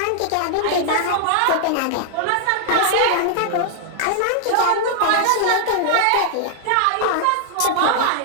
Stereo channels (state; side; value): different; both; correlation -0.01